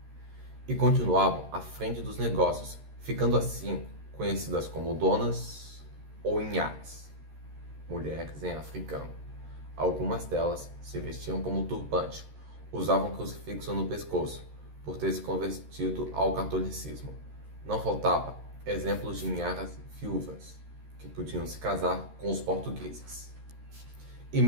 e continuavam à frente dos negócios, ficando assim conhecidas como donas ou inhas, mulheres em africano. Algumas delas se vestiam como turbante, usavam crucifixo no pescoço, por ter se convertido ao catolicismo. Não faltava exemplos de inharas viúvas, que podiam se casar com os portugueses. E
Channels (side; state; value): left; late; 13 ms